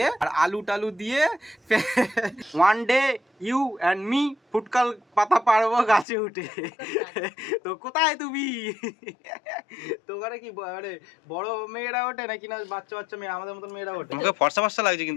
আর আলু টালু দিয়ে one day you and me ফুটকাল পাতা পারবো গাছে উঠে। তো কোথায় তুমি? তো ওখানে কি মানে বড় মেয়েরা ওঠে নাকি না বাচ্চা বাচ্চা মেয়ে আমাদের মতন মেয়েরা ওঠে? মুখে ফর্সা ফর্সা লাগছে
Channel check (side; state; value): right; drops out; at 6.1 s